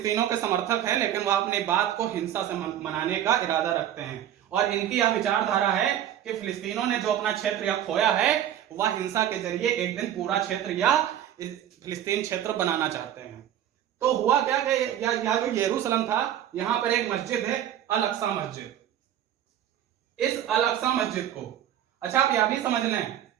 के समर्थक है, लेकिन वह अपनी बात को हिंसा से मनाने का इरादा रखते हैं, और इनकी यह विचारधारा है कि फिलिस्तीनों ने जो अपना क्षेत्र या खोया है, वह हिंसा के जरिए एक दिन पूरा क्षेत्र या फिलिस्तीन क्षेत्र बनाना चाहते हैं। तो हुआ क्या कि यह जो यरूशलेम था, यहां पर एक मस्जिद है, अल अक्सा मस्जिद। इस अल अक्सा मस्जिद को, अच्छा आप यह भी समझ लें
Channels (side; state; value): left; quieter; 11.0 dB